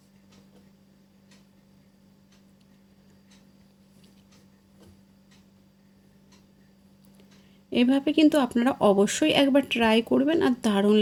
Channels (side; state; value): both; identical; correlation 1.00